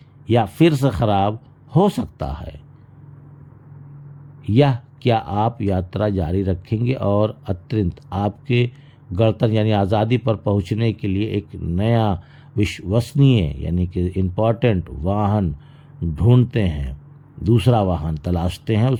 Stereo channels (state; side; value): identical; both; correlation 1.00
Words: या फिर से ख़राब हो सकता है? या क्या आप यात्रा जारी रखेंगे और अत्यंत आपके गणतंत्र यानी आज़ादी पर पहुंचने के लिए एक नया विश्वसनीय यानी कि इम्पॉर्टेंट वाहन ढूंढते हैं, दूसरा वाहन तलाशते हैं,